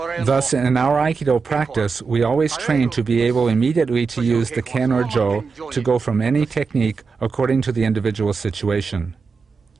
Thus, in our Aikido practice, we always train to be able immediately to use the ken or jo to go from any technique according to the individual situation.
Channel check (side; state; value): left; quieter; 5.0 dB